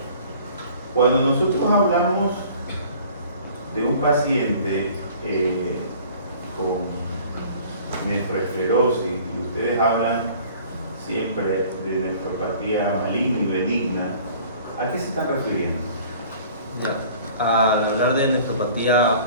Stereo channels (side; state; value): both; inverted; correlation -0.49